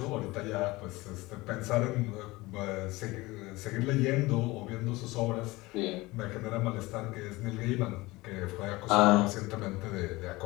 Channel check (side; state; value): right; quieter; 21.0 dB